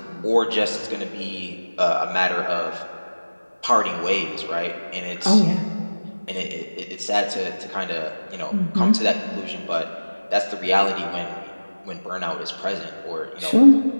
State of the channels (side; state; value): both; inverted; correlation -1.00